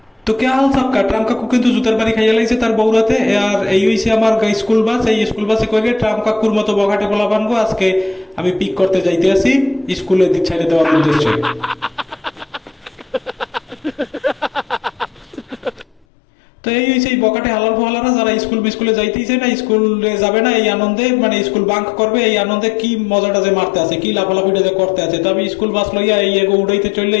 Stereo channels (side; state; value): right; drops out; at 16.0 s